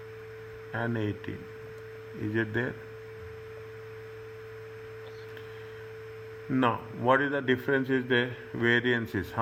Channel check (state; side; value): identical; both; correlation 1.00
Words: and 18. Is it there? Now, what is the difference is there? Variances.